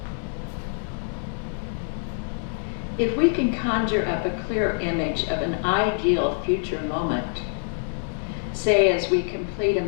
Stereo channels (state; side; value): silent; right; 61 dB below the other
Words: If we can conjure up a clear image of an ideal future moment, say as we complete a